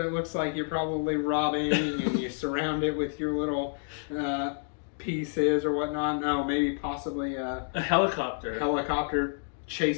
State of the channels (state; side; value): silent; right; digital silence